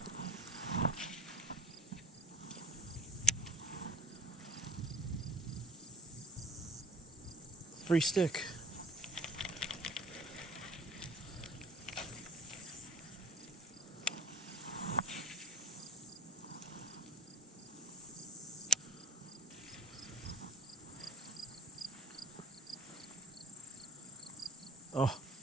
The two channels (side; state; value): both; normal; correlation 0.41